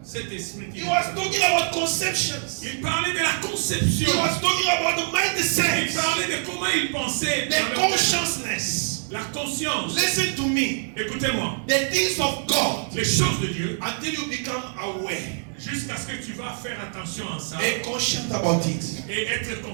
cet esprit qui He was talking about conceptions. il parlait de la He conception. was talking about the Il mindset, parlait de comment il pensait. the consciousness. La conscience. Listen to me. Écoutez-moi. The things of God, Les choses de Dieu, until you become aware jusqu'à ce que tu vas faire attention à ça and conscious about it, et être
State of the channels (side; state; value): left; silent; digital silence